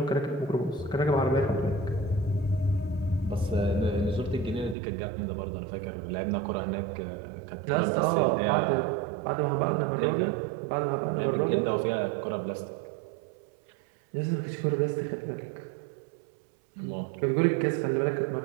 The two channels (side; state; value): left; drops out; at 4.8 s